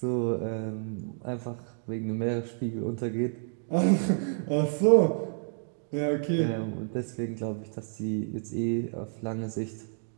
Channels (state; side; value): silent; left; digital silence